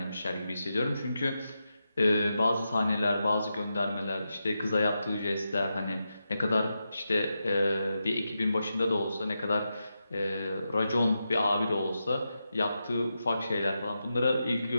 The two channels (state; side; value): inverted; both; correlation -0.88